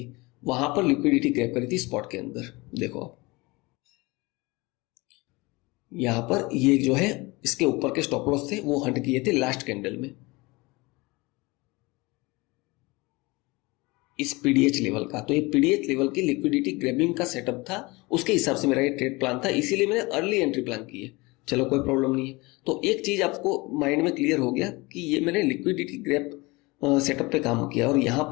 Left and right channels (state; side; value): quieter; right; 23.9 dB